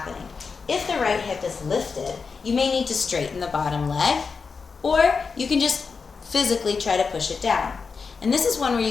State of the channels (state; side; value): quieter; right; 5.1 dB